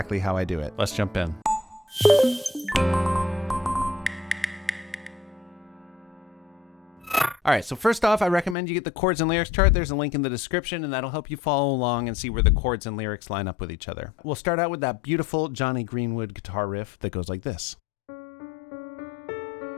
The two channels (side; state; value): right; drops out; at 8.6 s